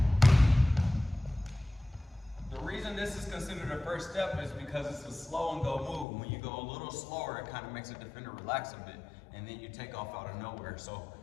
The reason this is considered a first step is because it's a slow and go move. When you go a little slower, it kind of makes a defender relax a bit, and then you take off out of nowhere. So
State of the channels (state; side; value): drops out; right; at 6.1 s